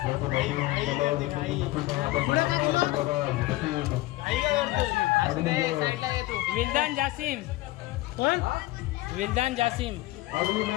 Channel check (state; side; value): quieter; right; 18.5 dB